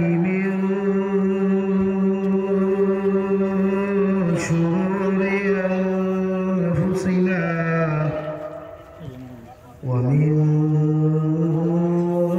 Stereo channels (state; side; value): identical; both; correlation 1.00